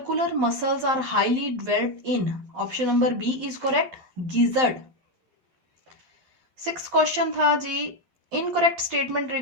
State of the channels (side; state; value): left; late; 12 ms